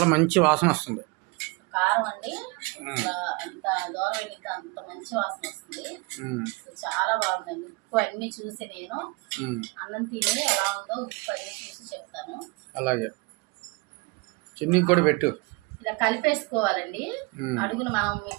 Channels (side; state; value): left; quieter; 27.0 dB